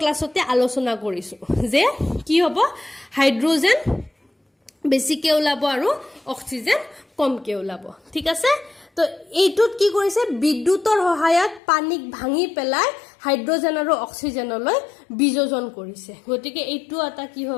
ক্লাছতে আলোচনা কৰিছো যে কি হ'ব হাইড্ৰজেন বেছিকে ওলাব আৰু অক্সিজেন কমকে ওলাব ঠিক আছে তো এইটোত কি কৰিছে বিদ্যুতৰ সহায়ত পানীক ভাঙি পেলাই হাইড্ৰজেন আৰু অক্সিজেনলৈ বিযোজন কৰিছে গতিকে এইটো এটা কি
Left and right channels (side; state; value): right; drops out; at 11.6 s